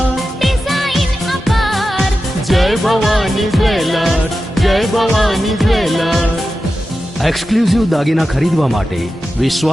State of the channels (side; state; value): both; normal; correlation 0.92